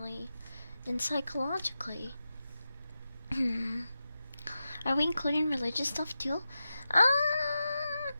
and psychologically. Are we including religious stuff too?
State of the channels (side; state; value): both; inverted; correlation -0.91